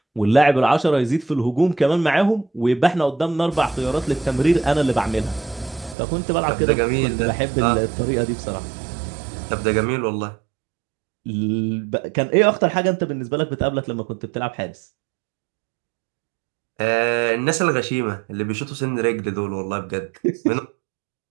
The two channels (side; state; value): left; drops out; at 6.0 s